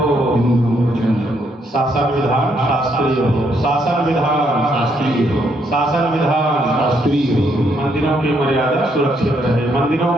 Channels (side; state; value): both; normal; correlation 0.73